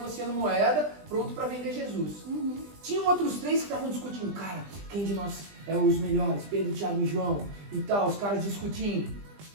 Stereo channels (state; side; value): late; left; 20 ms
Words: moeda, pronto para vender Jesus. Tinham outros 3 que estavam discutindo. Cara, quem de nós é os melhores? Pedro, Tiago e João. E tal, os caras discutindo.